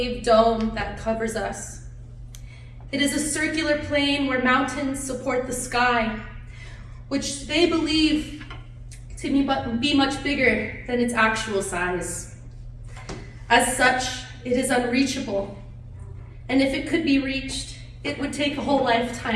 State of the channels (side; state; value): both; identical; correlation 1.00